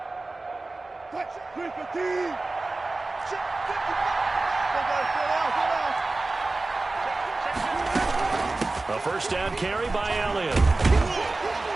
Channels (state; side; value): quieter; left; 3.2 dB